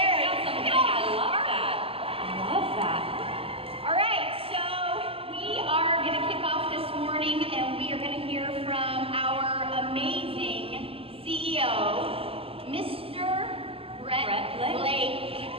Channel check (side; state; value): left; late; 0.27 ms